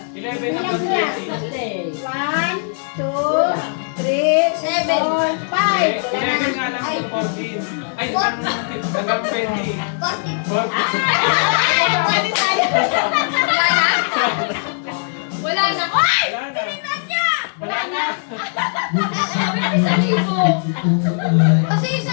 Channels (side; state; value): right; silent; 66 dB below the other